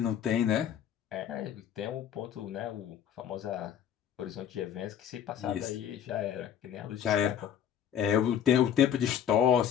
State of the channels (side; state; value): right; quieter; 9.1 dB